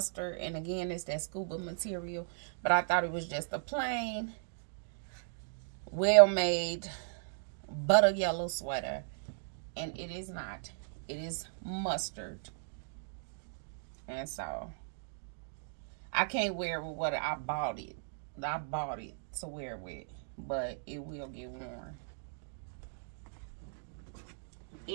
and again it's that scuba material. But I thought it was just a plain, well made butter yellow sweater, and it is not. It is mustard, and so I can't wear it with what I bought it. I bought it to wear with, but it will get worn.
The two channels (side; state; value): left; silent; digital silence